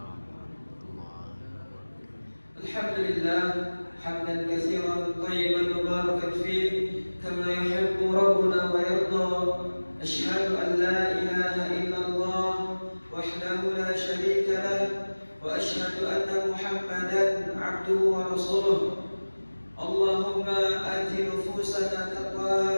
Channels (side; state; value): both; inverted; correlation -1.00